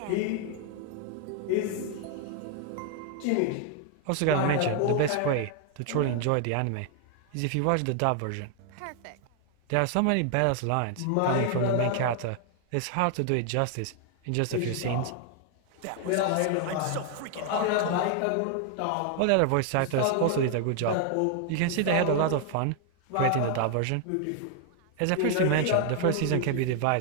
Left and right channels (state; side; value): different; both; correlation 0.00